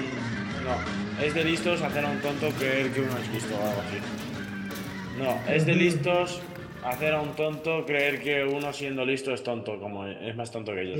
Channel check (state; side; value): identical; both; correlation 1.00